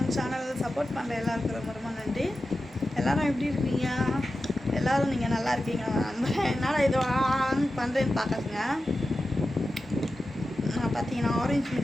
channel. Support பண்ணுற எல்லாருக்கும் ரொம்ப ரொம்ப நன்றி. எல்லோரும் எப்படி இருக்கீங்க? எல்லோரும் நீங்கள் நல்லா இருக்கீங்க. என்னால் இது ஆன் பண்ணுறேன்னு பார்க்காதுங்க. நான் பார்த்தீங்கன்னா ஆரஞ்சு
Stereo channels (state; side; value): normal; both; correlation 0.93